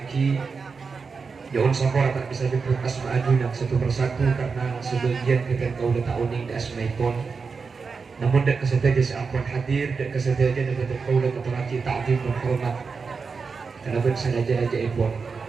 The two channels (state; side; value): quieter; left; 5.0 dB